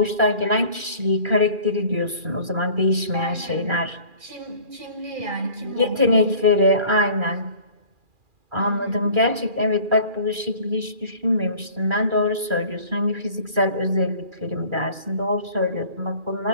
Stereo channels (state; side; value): late; left; 2.4 ms